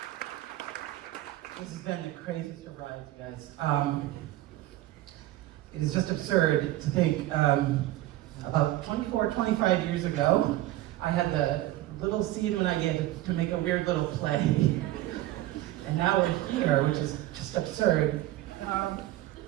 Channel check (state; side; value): quieter; left; 15.6 dB